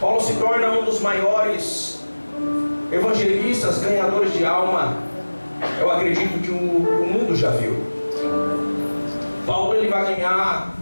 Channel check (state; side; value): inverted; both; correlation -1.00